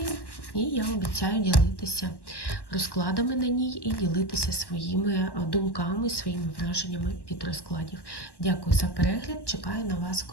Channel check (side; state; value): right; late; 1.1 ms